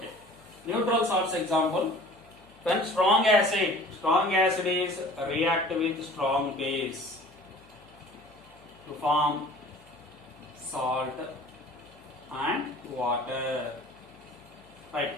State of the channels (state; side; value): noise; left; hum, 27 dB below the sound